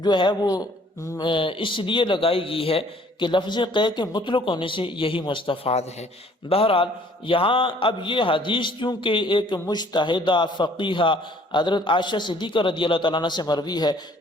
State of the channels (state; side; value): normal; both; correlation 0.58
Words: جو ہے وہ اس لیے لگائی گئی ہے کہ لفظ قے کے مطلق ہونے سے یہی مستفاد ہے۔ بہرحال یہاں اب یہ حدیث چونکہ ایک مجتہدہ فقیہہ حضرت عائشہ صدیقہ رضی اللہ تعالیٰ عنہ سے مروی ہے